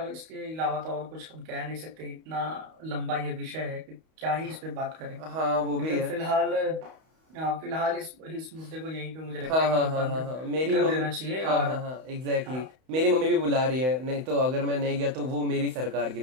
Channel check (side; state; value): left; late; 31 ms